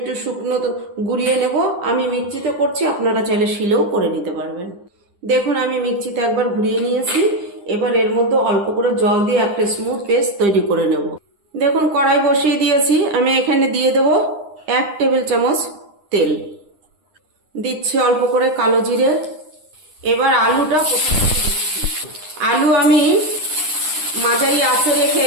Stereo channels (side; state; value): left; late; 9.9 ms